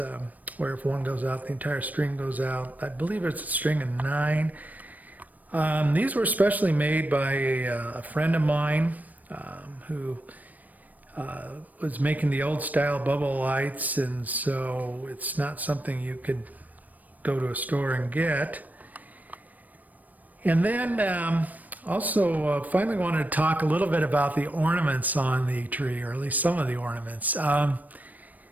where if one goes out, the entire string goes out. I believe it's a string of 9. These were specially made by a friend of mine who was making the old style bubble lights, and so it's not something you could go to a store and get. And then also finally wanted to talk a little bit about the ornaments on the tree, or at least some of the ornaments.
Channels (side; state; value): left; late; 0.079 ms